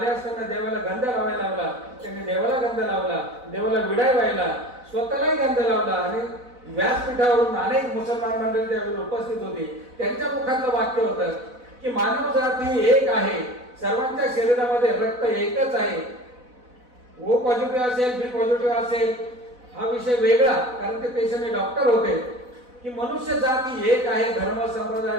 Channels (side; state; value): left; late; 4.0 ms